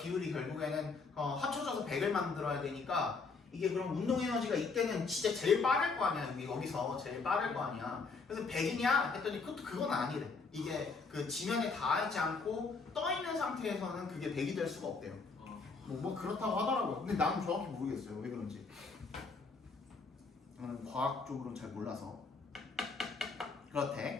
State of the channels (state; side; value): quieter; right; 4.4 dB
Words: 결국에는 합쳐져서 100을 만들어야 되니까 이게 그럼 운동 에너지가 이때는 진짜 제일 빠를 거 아니야. 여기서 제일 빠를 거 아니야. 그래서 100이냐 했더니 그건 아니래. 이게 그 지면에 닿지 않고 떠 있는 상태에서는 그게 100이 될 수가 없대요. 뭐 그렇다고 하더라고요. 근데 나는 정확히 모르겠어요. 왜 그런지. 저는 과학적으로는 잘 몰라서.